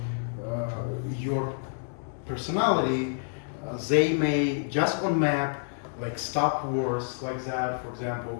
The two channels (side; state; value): right; silent; digital silence